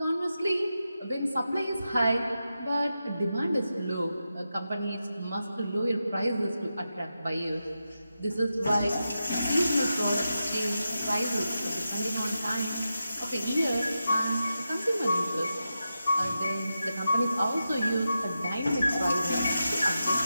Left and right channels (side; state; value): both; inverted; correlation -0.89